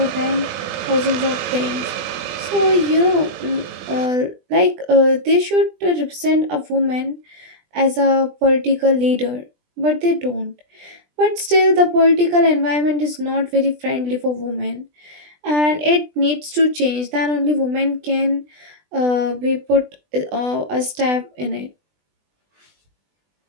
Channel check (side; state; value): left; late; 20 ms